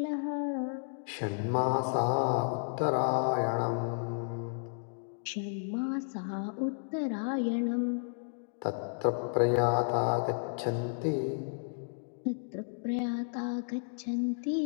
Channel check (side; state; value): right; silent; digital silence